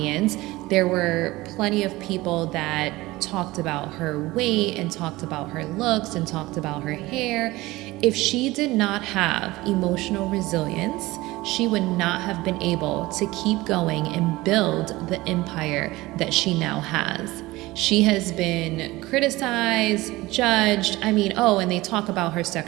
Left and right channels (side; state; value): left; quieter; 19.5 dB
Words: There were plenty of people that talked about her weight and talked about her looks and talked about her hair. If she did not have emotional resilience, she would not have been able to keep going and build the empire that she now has. She has been criticized, judged. I mean, and they talk about her